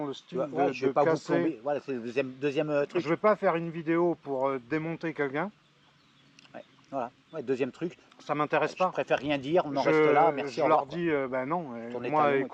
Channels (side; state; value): both; identical; correlation 1.00